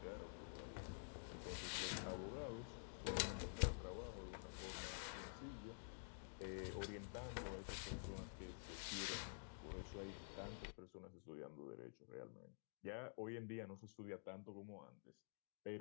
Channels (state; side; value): silent; right; digital silence